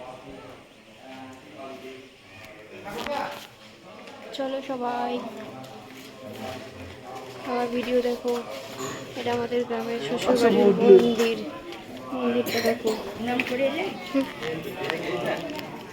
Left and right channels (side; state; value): both; identical; correlation 1.00